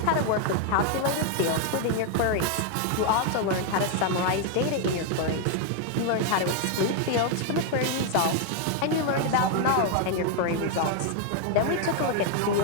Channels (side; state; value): both; different; correlation 0.01